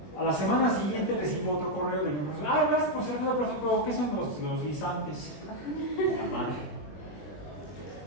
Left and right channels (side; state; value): right; late; 20 ms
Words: A la semana siguiente recibo otro correo del mismo profesor. Gracias, profesor, pero ¿qué son los guisantes? La madre.